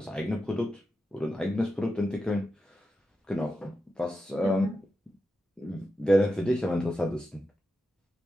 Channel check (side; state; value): both; normal; correlation 0.89